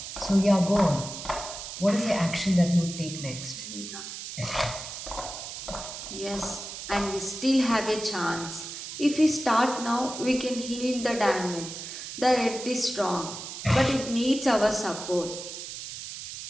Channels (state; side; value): noise; right; hiss, 9 dB below the sound